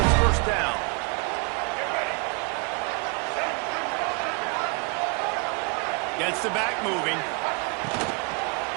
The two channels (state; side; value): quieter; left; 34.7 dB